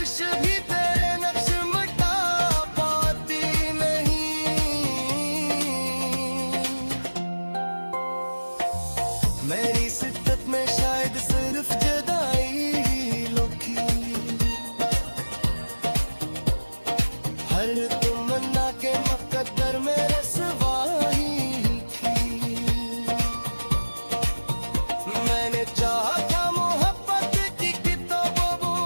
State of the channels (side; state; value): both; inverted; correlation -1.00